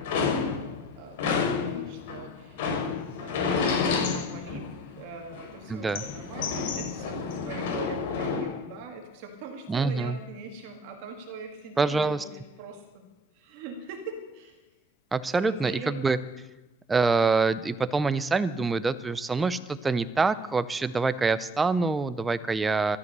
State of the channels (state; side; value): normal; both; correlation 0.59